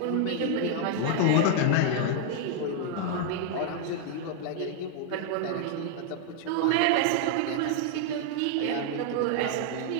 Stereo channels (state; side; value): different; both; correlation 0.00